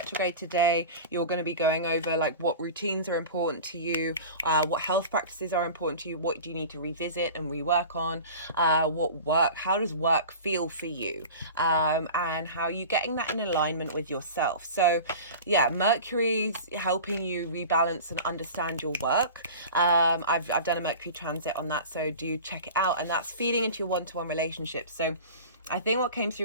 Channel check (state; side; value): inverted; both; correlation -0.36